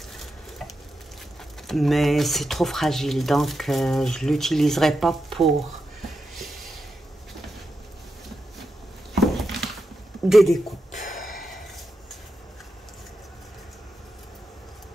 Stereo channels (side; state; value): both; normal; correlation 0.88